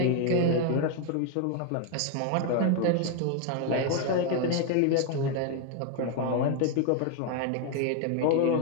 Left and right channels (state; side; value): different; both; correlation 0.01